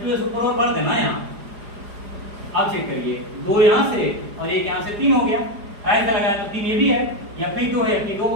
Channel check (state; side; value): late; left; 4.9 ms